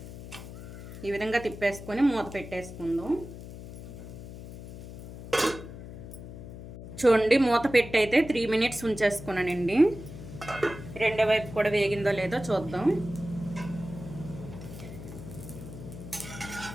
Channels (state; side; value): noise; left; hum, 12 dB below the sound